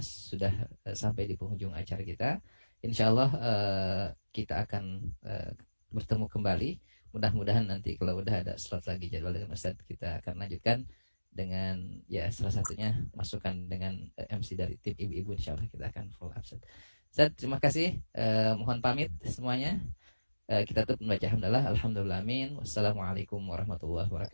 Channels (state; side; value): inverted; both; correlation -1.00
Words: sudah sampai di penghujung acara kita. Insyaallah kita akan bertemu kembali. Mudah-mudahan nanti kalau udah ada slot lagi jadwal dengan Ustadz, kita akan lanjutkan dengan ya salah satunya masukan dengan MC dari tim ibu-ibu. Insyaallah kita akan full absen. Ustadz, terima kasih. Mohon pamit semuanya. Kita tutup membaca hamdalah. Alhamdulillah, amin. Wassalamualaikum warahmatullahi